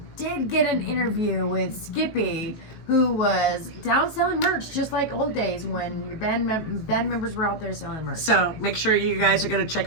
did get an interview with Skippy, who was down selling merch, just like old days when your band members were out there selling merch. So make sure you guys are going to check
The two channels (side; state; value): right; late; 18 ms